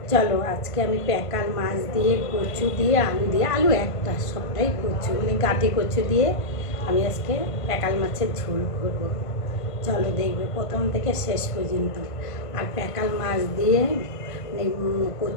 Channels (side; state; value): right; late; 1.5 ms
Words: চলো আজকে আমি প্যাকাল মাছ দিয়ে, কচু দিয়ে, আলু দিয়ে, আলু একটা, সবটাই কচু মানে গাঁটি কচু দিয়ে আমি আজকে প্যাকাল মাছের ঝোল করবো। চলো দেখবে প্রথম থেকে শেষ পর্যন্ত। আর প্যাকাল মাছ দিয়ে